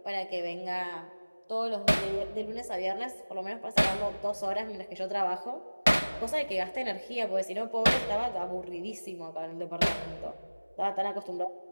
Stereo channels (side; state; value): both; inverted; correlation -1.00